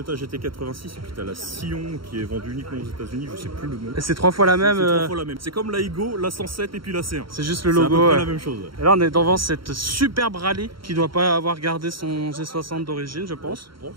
GT86 et puis t'as la Scion qui est vendue uniquement aux États-Unis, je sais plus le nom. Et c'est 3 fois la même. C'est 3 fois la même. C'est comme la Igo, la 107 et puis la C1. C'est juste le logo. C'est la même chose. Et là on est devant cette superbe rallye qui doit pas avoir gardé son G60 d'origine je pense. Je pense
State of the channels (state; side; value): late; left; 0.73 ms